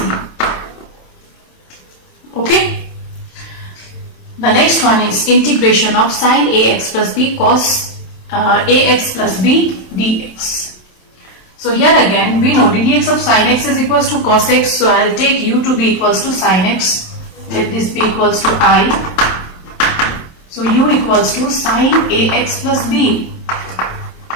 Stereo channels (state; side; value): late; right; 27 ms